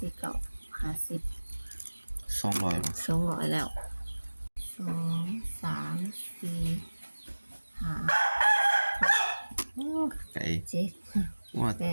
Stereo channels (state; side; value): inverted; both; correlation -1.00